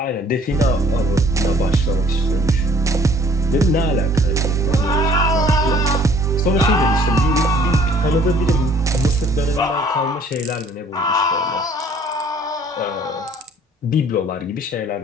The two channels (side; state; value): both; normal; correlation 0.57